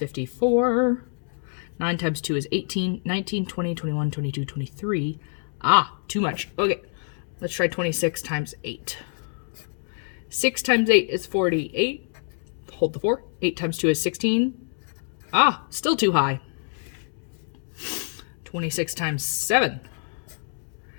9 times 2 is 18, 19, 20, 21, 22, 23. Ah, too much. Okay, let's try 26 times 8. 6 times 8 is 48. Hold the 4. 8 times 2 is 16. Ah, still too high. 26 times 7.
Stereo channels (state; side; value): silent; right; 61 dB below the other